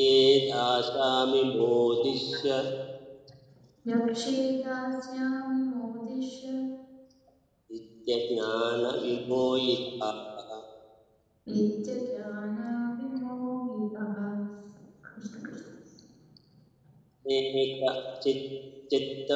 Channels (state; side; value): identical; both; correlation 1.00